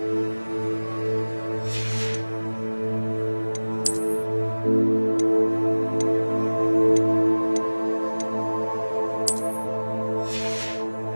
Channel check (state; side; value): inverted; both; correlation -1.00